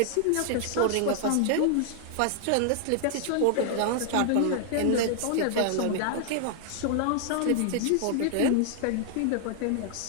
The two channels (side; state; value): both; different; correlation 0.00